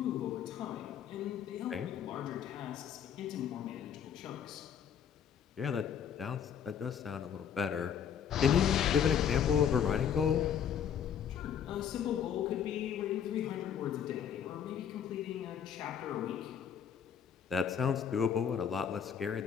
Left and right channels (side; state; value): right; quieter; 8.3 dB